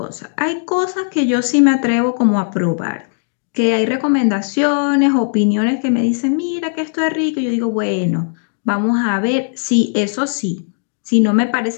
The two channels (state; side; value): silent; right; digital silence